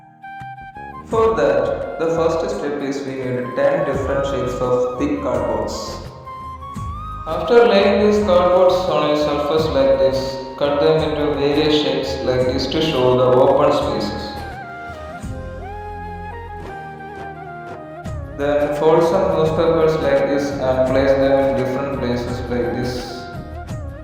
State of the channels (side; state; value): both; identical; correlation 1.00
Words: For that, the first step is we need 10 different shapes of thick cardboards. After laying these cardboards on a surface like this, cut them into various shapes like this to show the open spaces. Then fold some newspapers like this and place them in different places like this.